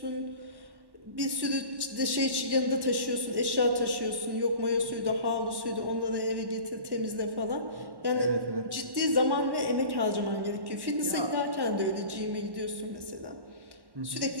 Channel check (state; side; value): late; left; 1.1 ms